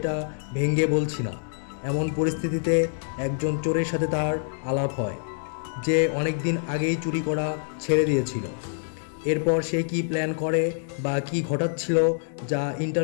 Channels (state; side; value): silent; right; digital silence